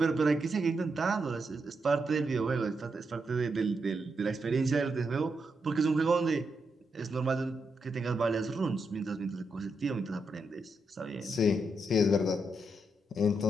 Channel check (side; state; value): both; normal; correlation 0.83